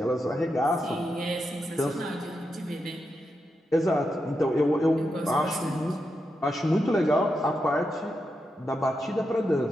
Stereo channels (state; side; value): normal; both; correlation 0.86